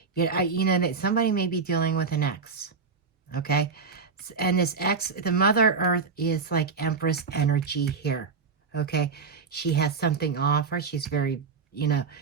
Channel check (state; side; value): quieter; left; 5.1 dB